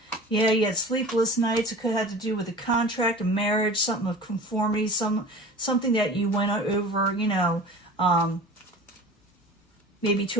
Yeah, you had sleepless nights. It could have to do with a contract, a marriage, something of conformity, something that you went over, you know, maybe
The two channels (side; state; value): both; normal; correlation 0.39